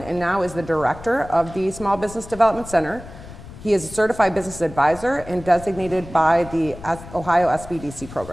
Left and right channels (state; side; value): noise; left; rumble, 16 dB below the sound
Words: and now is the director of the Small Business Development Center. He is a certified business advisor and designated by the Ohio SBDC